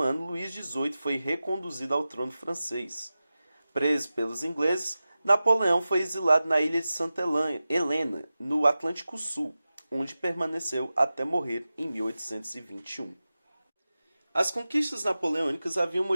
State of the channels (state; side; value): inverted; both; correlation -0.95